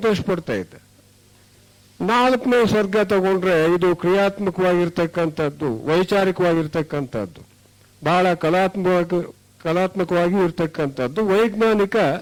ಪಡ್ತಾ ಇದ್ದ. 4ನೇ ಸ್ವರ್ಗ ತಗೊಂಡ್ರೆ ಇದು ಕ್ರಿಯಾತ್ಮಕವಾಗಿರ್ತಕ್ಕಂಥದ್ದು, ವೈಚಾರಿಕವಾಗಿರ್ತಕ್ಕಂಥದ್ದು, ಬಹಳ ಕಲಾತ್ಮಕವಾಗಿ ಇರ್ತಕ್ಕಂಥದ್ದು, ವೈಜ್ಞಾನಿಕ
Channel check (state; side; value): identical; both; correlation 1.00